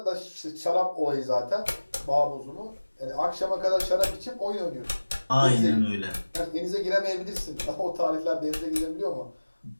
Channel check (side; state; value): both; inverted; correlation -1.00